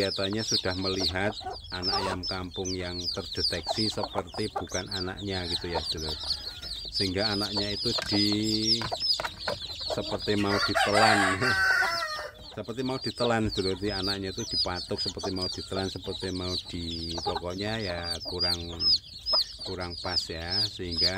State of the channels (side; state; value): both; identical; correlation 1.00